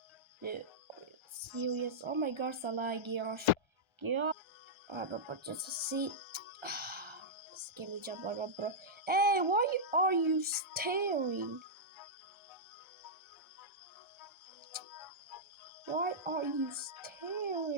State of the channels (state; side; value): late; left; 1.3 ms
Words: Dude, serious? Oh my gosh, gosh. But just to see. Give me jump on, bro. Hey, why are you staring? Why are you